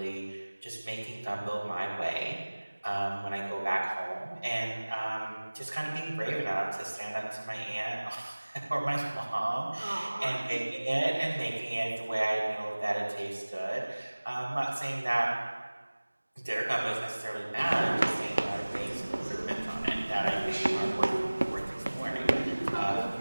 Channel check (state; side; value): inverted; both; correlation -1.00